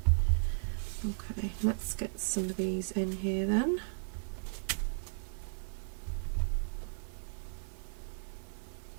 Okay, let's get some of these in here then.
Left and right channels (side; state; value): left; silent; digital silence